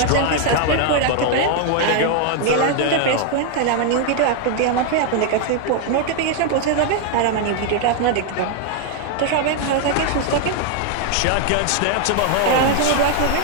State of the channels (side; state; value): both; different; correlation 0.00